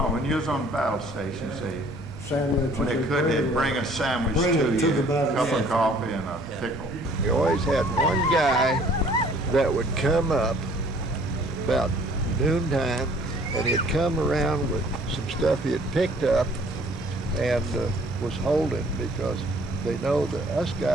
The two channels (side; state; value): both; normal; correlation 0.56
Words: when you was on the battle stations, when they could, they'd bring a sandwich to you, a cup of coffee and a pickle. You always had one guy that would come up about noontime, and he'd come around with some stuff he had picked up and was holding because they know that us